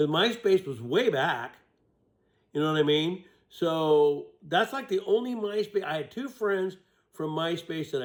MySpace was way back. You know what I mean? So that's like the only MySpace. I had two friends from MySpace that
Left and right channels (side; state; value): both; identical; correlation 1.00